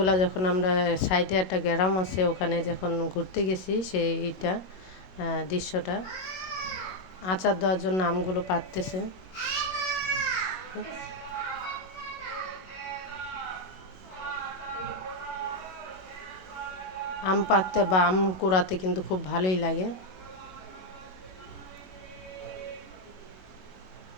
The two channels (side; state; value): right; late; 22 ms